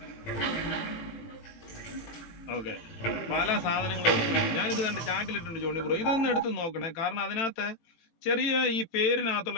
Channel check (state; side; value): late; right; 18 ms